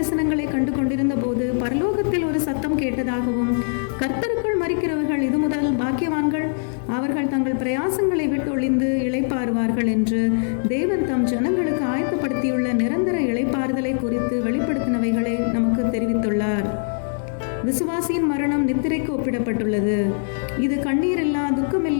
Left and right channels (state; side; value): silent; right; digital silence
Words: கண்டு கொண்டிருந்த போது பரலோகத்தில் ஒரு சத்தம் கேட்டதாகவும், கர்த்தருக்குள் மரிக்கிறவர்கள் இது முதல் பாக்கியவான்கள், அவர்கள் தங்கள் பிரயாசங்களை விட்டு ஒளிந்து இளைப்பாறுவார்கள் என்று தேவன் தம் ஜனங்களுக்கு ஆயத்தப்படுத்தியுள்ள நிரந்தர இளைப்பாறுதலை குறித்து வெளிப்படுத்தினவைகளை நமக்கு தெரிவித்துள்ளார். விசுவாசியின் மரணம் நித்திரைக்கு ஒப்பிடப்பட்டுள்ளது. இது கண்ணீரில்லா,